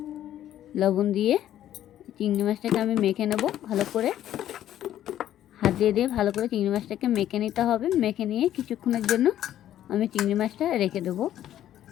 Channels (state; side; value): quieter; right; 11.9 dB